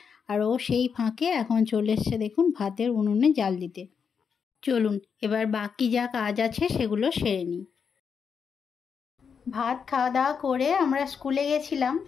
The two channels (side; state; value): right; quieter; 6.4 dB